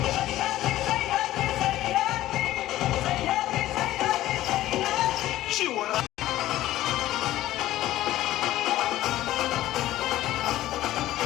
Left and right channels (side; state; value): right; quieter; 14.8 dB